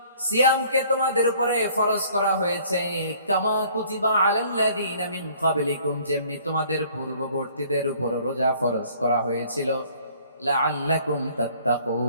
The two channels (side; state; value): both; inverted; correlation -0.56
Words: সিয়ামকে তোমাদের উপরে ফরজ করা হয়েছে কামা কুতিবা আলাল্লাযীনা মিন ক্বাবলিকুম, যেমনি তোমাদের পূর্ববর্তীদের উপর রোজা ফরজ করা হয়েছিল, লাআল্লাকুম